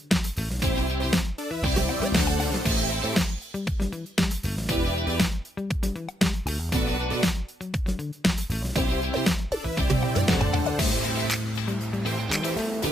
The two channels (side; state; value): both; normal; correlation 0.80